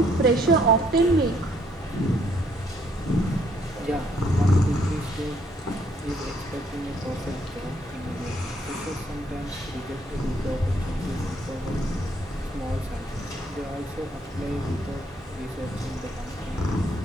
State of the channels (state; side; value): normal; both; correlation 0.67